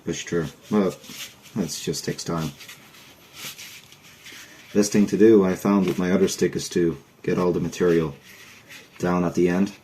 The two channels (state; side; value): identical; both; correlation 1.00